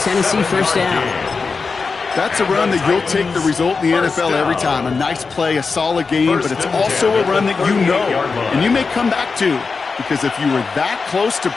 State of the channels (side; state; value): right; quieter; 4.6 dB